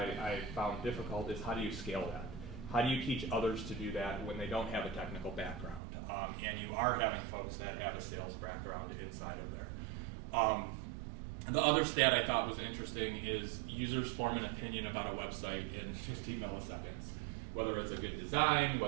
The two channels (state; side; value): drops out; left; at 5.8 s